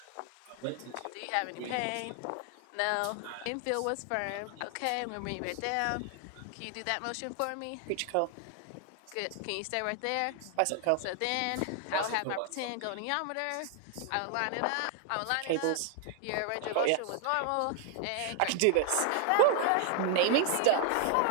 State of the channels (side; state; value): both; different; correlation 0.00